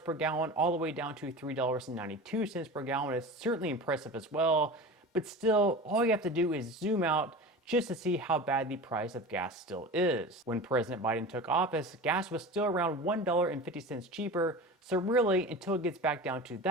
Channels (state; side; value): normal; both; correlation 0.33